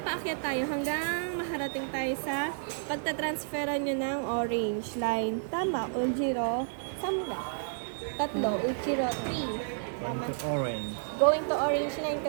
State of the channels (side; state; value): left; silent; digital silence